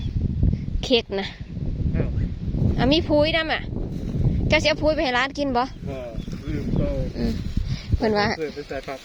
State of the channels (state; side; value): identical; both; correlation 1.00